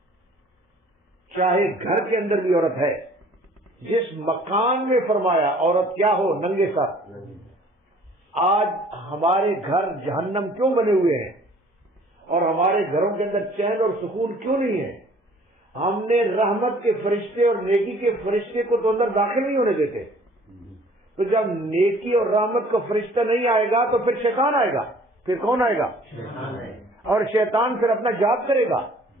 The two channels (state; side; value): normal; both; correlation 0.54